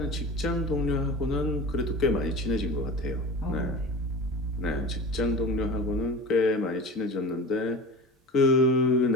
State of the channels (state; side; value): normal; both; correlation 0.33